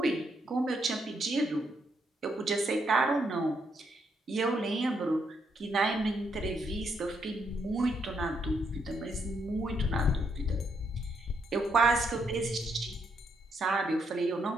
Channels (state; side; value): normal; both; correlation 0.76